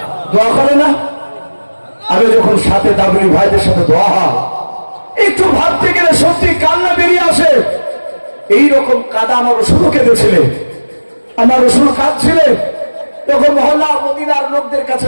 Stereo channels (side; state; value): both; inverted; correlation -1.00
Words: দোয়া করে না। আমি যখন সাথে তাবলীগ ভাইদের সাথে দোয়া হয় একটু ভাবতে গেলে সত্যি কান্না বেরিয়ে আসে। এইরকম কাদা আমার রসুলও কেঁদেছিলেন, আমার রসুল কাঁদছিলেন। তখন মহল্লা মদিনার লোকদের কাছে